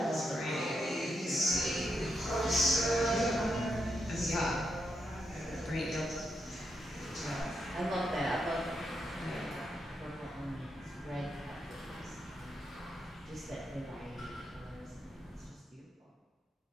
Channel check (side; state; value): both; normal; correlation 0.82